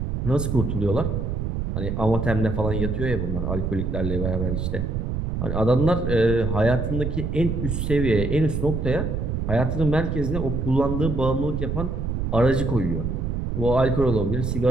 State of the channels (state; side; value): noise; right; rumble, 2 dB below the sound